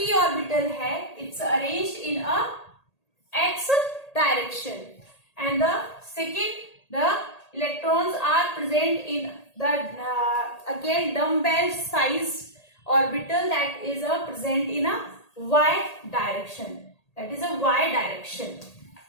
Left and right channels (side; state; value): right; late; 1.8 ms